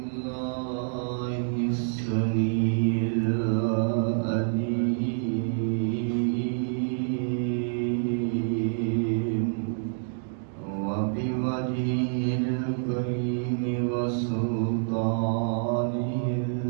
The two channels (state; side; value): silent; left; digital silence